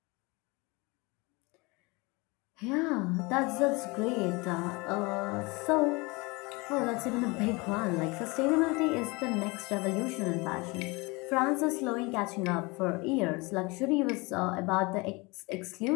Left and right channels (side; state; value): right; quieter; 25.9 dB